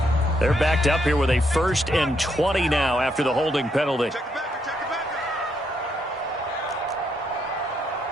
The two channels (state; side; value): normal; both; correlation 0.76